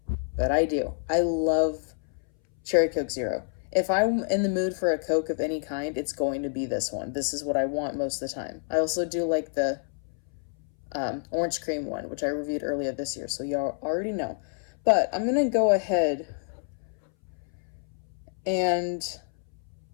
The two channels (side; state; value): right; silent; 59 dB below the other